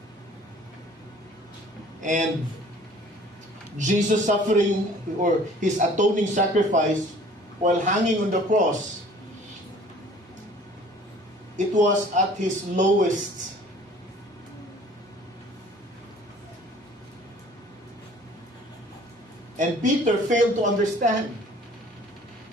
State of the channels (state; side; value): normal; both; correlation 0.51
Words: And Jesus' suffering, or his atoning sacrifice while hanging on the cross, it was at his lowest. And Peter failed to understand